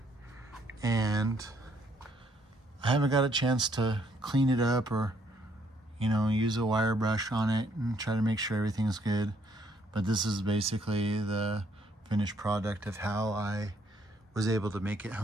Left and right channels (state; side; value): normal; both; correlation 0.68